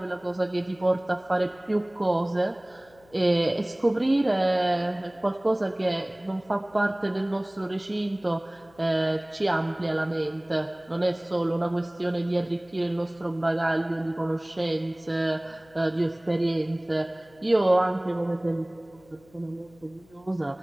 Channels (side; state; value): left; noise; hum, 29 dB below the sound